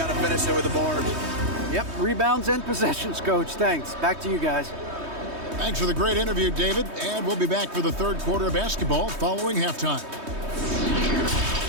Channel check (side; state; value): left; late; 3.2 ms